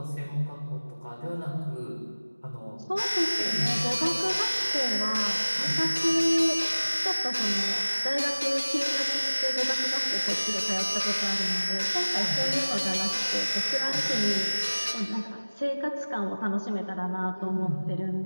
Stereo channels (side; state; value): both; inverted; correlation -1.00